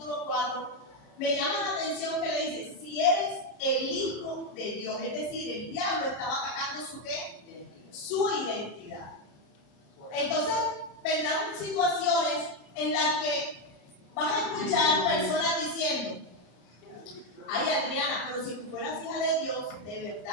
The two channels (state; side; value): late; right; 33 ms